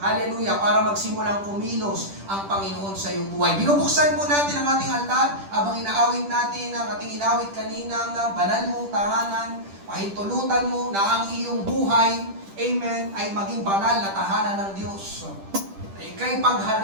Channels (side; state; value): left; late; 10 ms